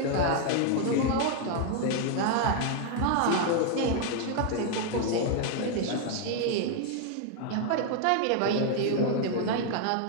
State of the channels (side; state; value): both; different; correlation 0.00